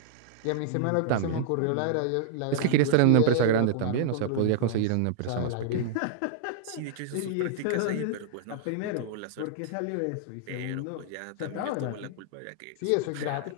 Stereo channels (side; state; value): both; different; correlation -0.01